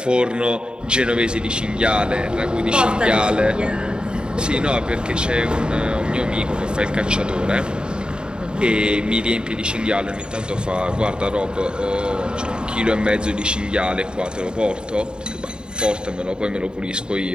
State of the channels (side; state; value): left; late; 0.049 ms